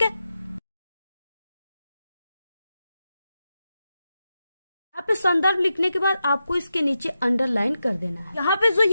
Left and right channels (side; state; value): both; inverted; correlation -0.89